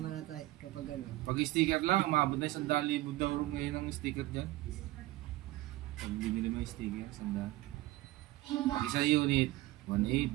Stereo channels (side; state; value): left; quieter; 17.9 dB